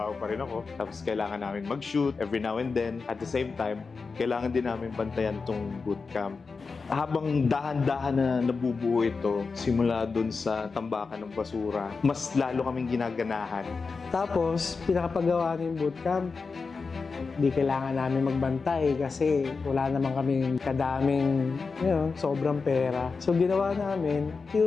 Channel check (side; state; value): right; quieter; 4.6 dB